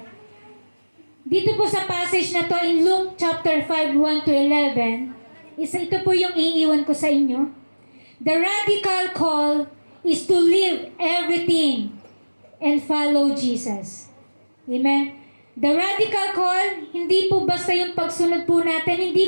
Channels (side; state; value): both; inverted; correlation -1.00